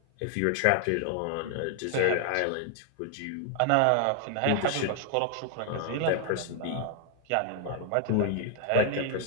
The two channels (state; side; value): different; both; correlation 0.00